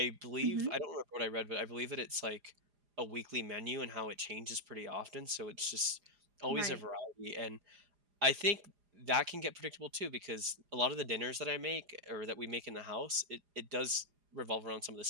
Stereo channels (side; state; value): left; late; 4.9 ms